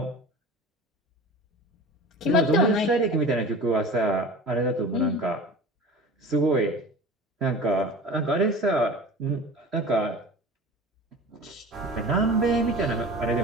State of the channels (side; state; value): both; normal; correlation 0.37